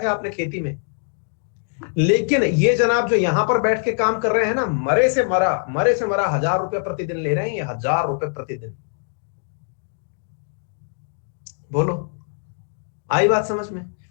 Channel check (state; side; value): silent; right; digital silence